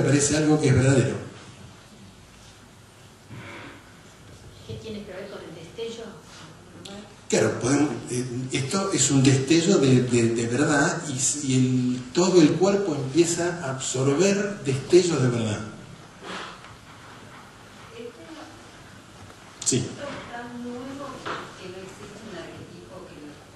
algo que es verdadero. ¿Qué tiene que ver con el destello? Claro, esto es un destello de verdad y todo el cuerpo empieza a absorber destellos de verdad. Sí. ¿Esto es tan nuevo que no existe un arquetipo porque es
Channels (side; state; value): both; identical; correlation 1.00